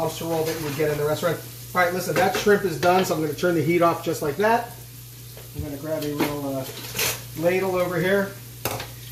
roll that you would get in the restaurant. All right, listen, that shrimp is done, so I'm going to turn the heat off just like that. I'm going to grab a little ladle over here.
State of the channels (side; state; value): both; identical; correlation 1.00